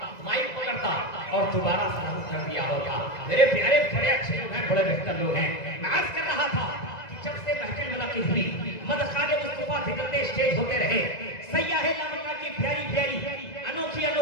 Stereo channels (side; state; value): right; late; 1.9 ms